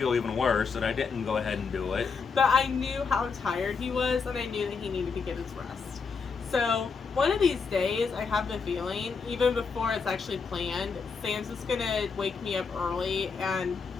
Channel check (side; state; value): right; quieter; 5.3 dB